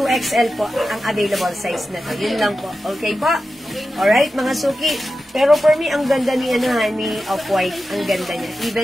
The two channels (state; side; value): normal; both; correlation 0.92